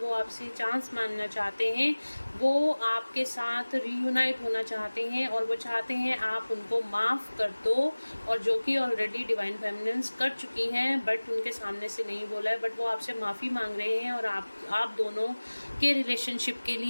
वो आपसे चांस मांगना चाहते हैं। वो आपके साथ रीयूनाइट होना चाहते हैं और वो चाहते हैं आप उनको माफ़ कर दो, और जो कि ऑलरेडी डिवाइन फेमिनेंस कर चुकी हैं बट उनके सामने से नहीं बोला है, बट वो आपसे माफ़ी मांग रहे हैं और आप दोनों के रिलेशनशिप के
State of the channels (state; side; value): inverted; both; correlation -1.00